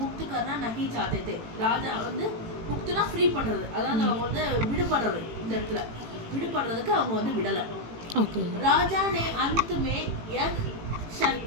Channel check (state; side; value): late; left; 18 ms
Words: கர்னா நஹி சாத்தே தே, ராஜா வந்து முக்துனா ஃப்ரீ பண்றது, அதாவது அவங்க வந்து விடுபடுறது, இந்த இடத்துல விடுபடுறதுக்கு அவங்க வந்து விடலை. राजा ने अंत में यह शर्त